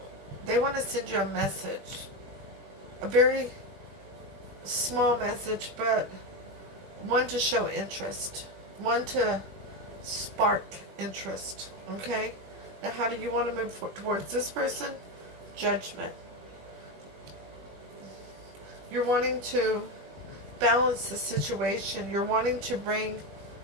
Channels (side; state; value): left; late; 20 ms